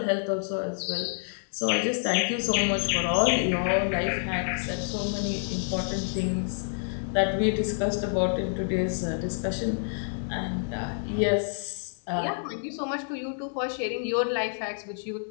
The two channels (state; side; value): silent; right; 59 dB below the other